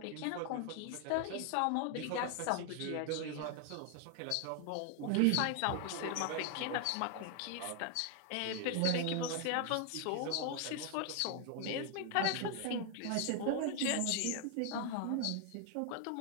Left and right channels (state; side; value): different; both; correlation 0.00